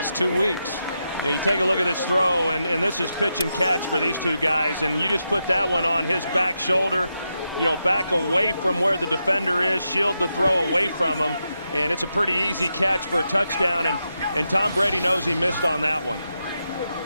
2 weeks. Yeah, you take a look at this throw, and this is pitch and catch for these two guys, and you just put that one on his back shoulder, you know, back away from where the defender is, shield the throw away from him, and it's a pretty easy catch for a touchdown, and Tom Brady knows he missed on that one.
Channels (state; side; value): inverted; both; correlation -0.86